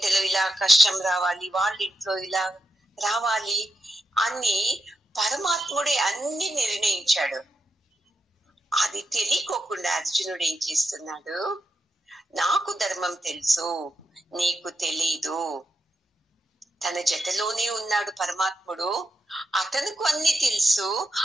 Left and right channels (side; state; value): both; normal; correlation 0.85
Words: ఇలా కష్టం రావాలి, వాళ్ళింట్లో ఇలా రావాలి అని పరమాత్ముడే అన్ని నిర్ణయించాడు. అది తెలియకోకుండా అర్జునుడు ఏం చేస్తున్నాడు? నాకు ధర్మం తెలుసు, నీకు తెలీదు. తన జతలోనే ఉన్నాడు పరమాత్ముడు, అతనుకు అన్ని తెలుసు,